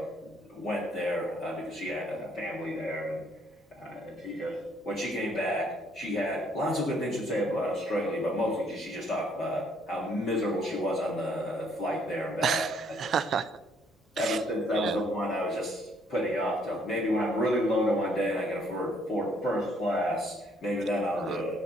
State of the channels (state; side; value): normal; both; correlation 0.66